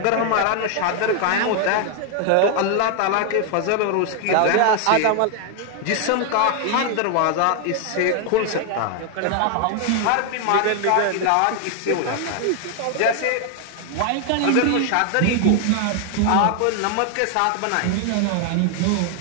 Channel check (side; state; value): both; different; correlation 0.00